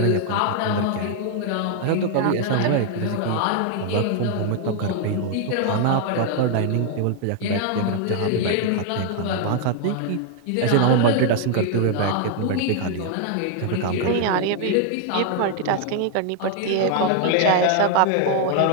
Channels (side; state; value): both; different; correlation 0.00